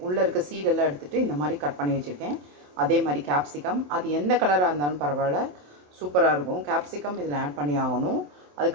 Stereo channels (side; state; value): left; late; 27 ms